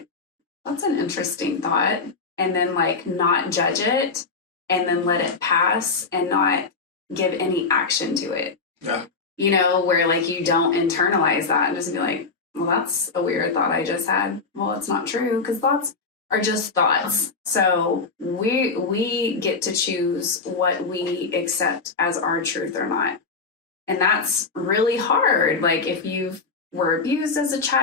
that's an interesting thought, and then like not judge it and then let it pass and not give any action to it. Yeah. Where like you don't internalize that and just be like, well, that's a weird thought I just had. Well, it's not true, because thoughts are just thoughts. So we get to choose what we accept as our truth or not. And that's really hard. Like if you were abused as a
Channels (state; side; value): quieter; right; 4.4 dB